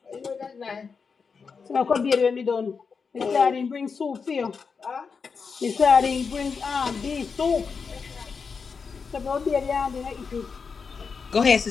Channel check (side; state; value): right; quieter; 5.4 dB